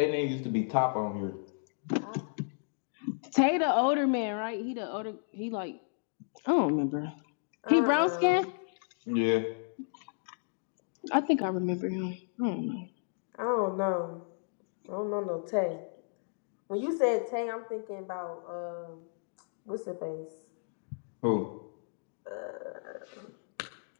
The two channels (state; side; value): silent; right; digital silence